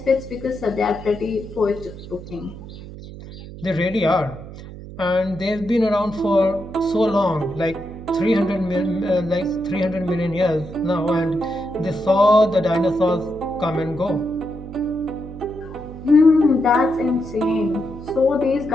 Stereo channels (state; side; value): noise; right; hum, 14 dB below the sound